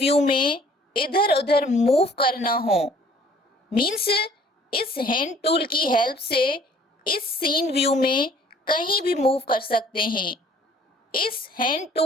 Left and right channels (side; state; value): both; normal; correlation 0.55